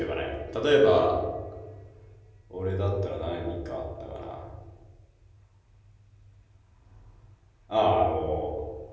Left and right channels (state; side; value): identical; both; correlation 1.00